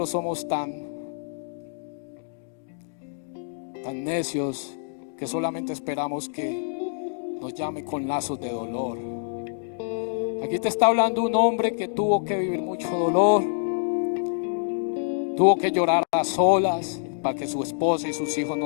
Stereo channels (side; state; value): right; silent; digital silence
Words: somos tan necios que solamente esperamos que nos llame con lazos de dolor. Aquí te está hablando un hombre que tuvo que vivir mucho dolor, tuvo que llorar a solas para que su esposa y sus hijos